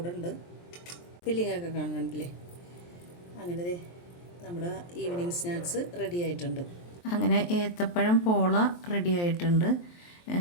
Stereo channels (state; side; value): late; right; 23 ms